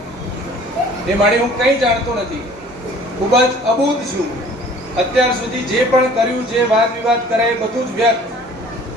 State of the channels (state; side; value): normal; both; correlation 0.50